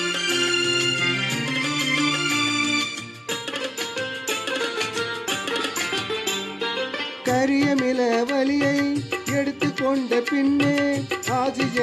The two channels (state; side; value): identical; both; correlation 1.00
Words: கரியமில வலியை எடுத்துக்கொண்ட பின்னே